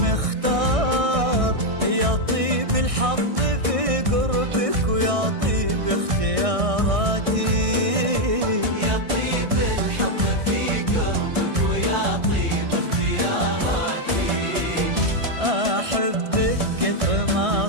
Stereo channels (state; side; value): late; left; 1.6 ms